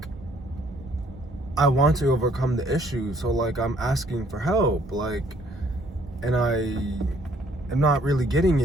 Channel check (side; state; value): both; normal; correlation 0.63